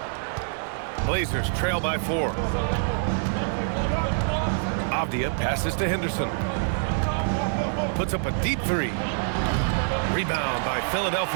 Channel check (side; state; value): left; silent; digital silence